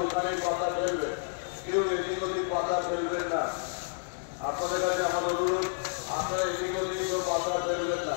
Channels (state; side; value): silent; right; digital silence